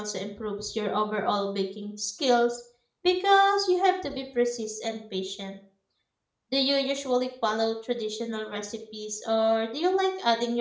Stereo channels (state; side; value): identical; both; correlation 1.00